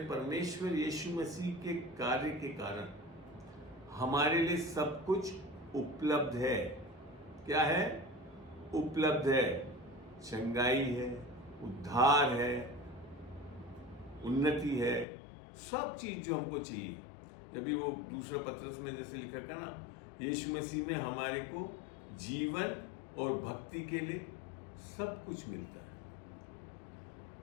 परमेश्वर यीशु मसीह के कार्य के कारण हमारे लिए सब कुछ उपलब्ध है। क्या है? उपलब्ध है। चंगाई है, उद्धार है, उन्नति है, सब चीज जो हमको चाहिए। जब भी वो दूसरा पत्रस में जैसे लिखा था ना, यीशु मसीह में हमारे को जीवन और भक्ति के लिए सब कुछ मिलता है।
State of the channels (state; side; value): drops out; right; at 15.1 s